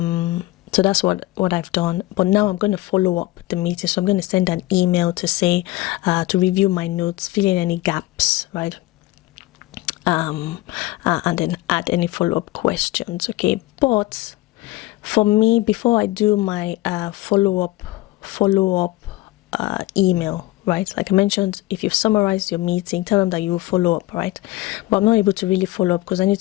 that's what I've done. But now I'm going to follow up the meeting. So I'm going to send an email to say, to review my notes, fill in any gaps, right? And then add any follow-up questions, okay? But for me, before I do my follow-up email, right? Like I mentioned, if you've summarized your meeting, tell them that you will follow up, right? But I'm not able to really follow up because I need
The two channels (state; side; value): quieter; right; 18.1 dB